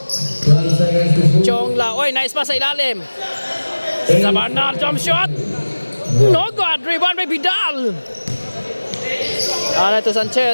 Chongla. Oy, nice pass sa ilalim. Sa banal. Jump shot. No good. Rebound by Bidal. Ano ito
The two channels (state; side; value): inverted; both; correlation -1.00